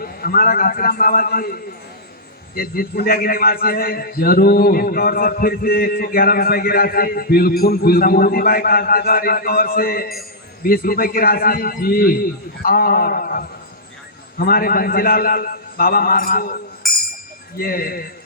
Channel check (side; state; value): both; normal; correlation -0.13